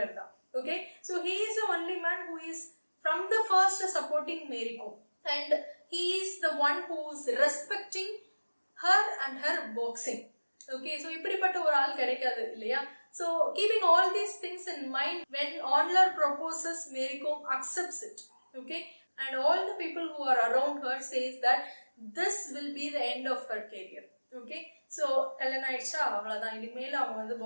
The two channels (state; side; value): inverted; both; correlation -1.00